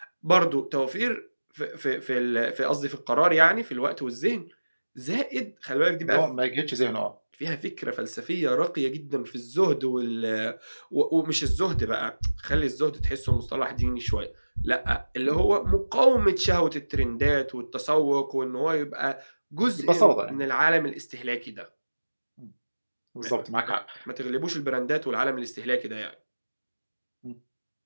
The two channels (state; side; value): inverted; both; correlation -1.00